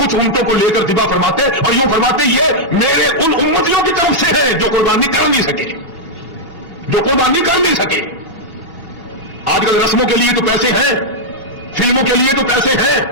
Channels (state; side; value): normal; both; correlation -0.04